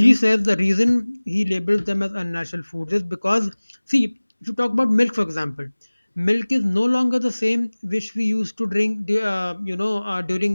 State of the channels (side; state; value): both; inverted; correlation -1.00